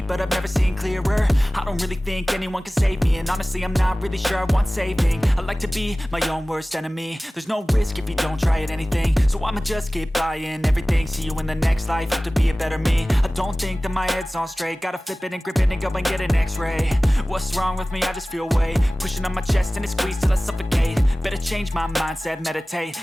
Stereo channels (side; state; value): both; normal; correlation 0.98